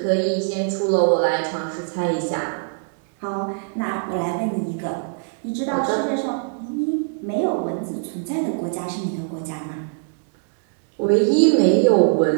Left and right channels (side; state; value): left; silent; digital silence